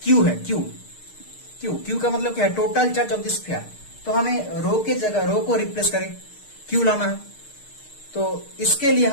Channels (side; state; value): right; late; 6.5 ms